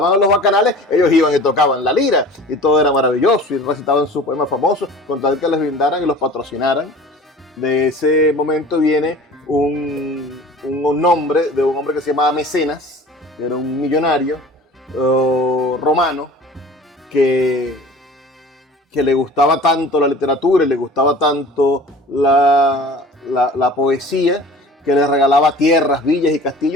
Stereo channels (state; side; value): normal; both; correlation 0.43